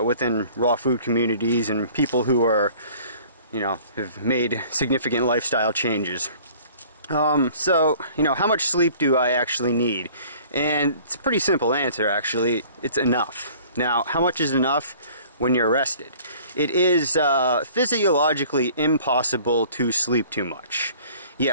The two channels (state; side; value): inverted; both; correlation -0.50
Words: raw food communities and people who are, have made significant lifestyle changes. So, how much sleep do I actually need? And it's a pretty simple answer, actually. It's enough. Now, how much is enough? When you're rested. It is physiologically impossible to sleep too much.